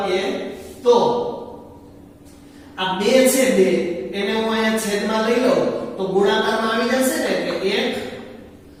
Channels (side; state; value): both; identical; correlation 1.00